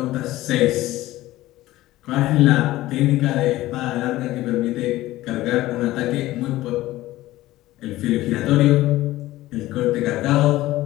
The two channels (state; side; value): quieter; right; 16.6 dB